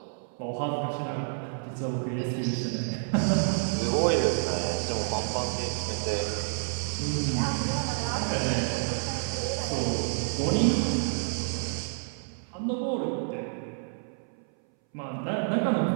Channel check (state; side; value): silent; left; 59 dB below the other